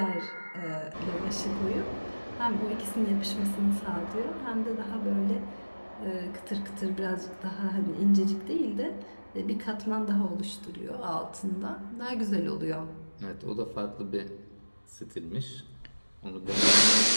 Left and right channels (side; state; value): both; inverted; correlation -1.00